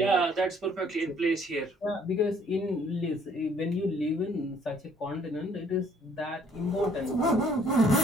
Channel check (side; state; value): both; normal; correlation 0.61